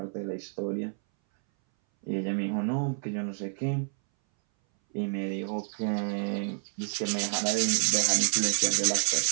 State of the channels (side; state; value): left; silent; 59 dB below the other